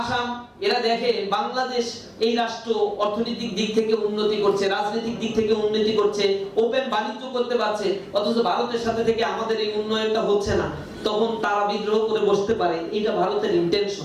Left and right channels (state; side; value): identical; both; correlation 1.00